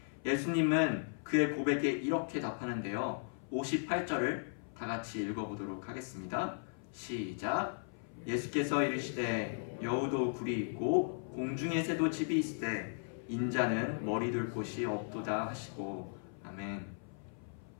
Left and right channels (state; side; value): silent; right; 53 dB below the other